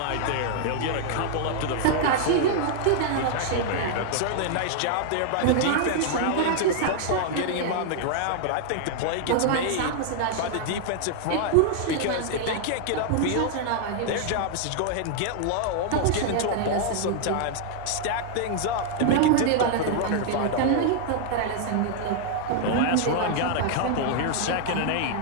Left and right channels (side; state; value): both; different; correlation 0.00